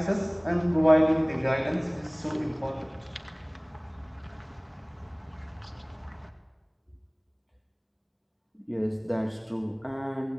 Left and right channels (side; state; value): both; identical; correlation 1.00